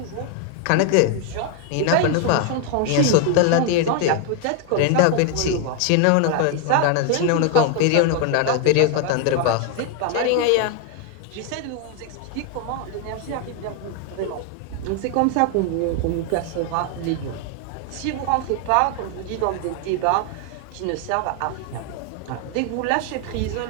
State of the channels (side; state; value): both; different; correlation 0.01